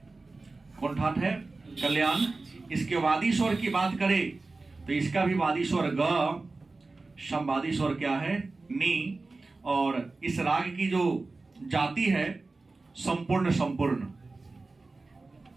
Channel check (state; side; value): quieter; left; 3.5 dB